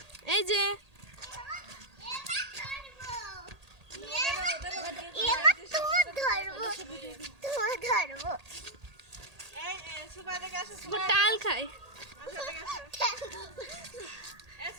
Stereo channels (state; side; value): late; left; 1.8 ms